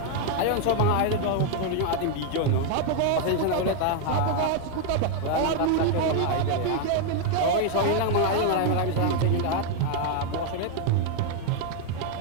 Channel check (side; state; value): both; different; correlation 0.01